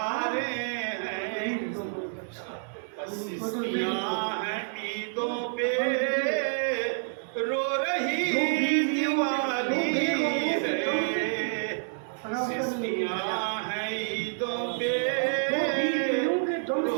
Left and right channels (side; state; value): left; silent; 59 dB below the other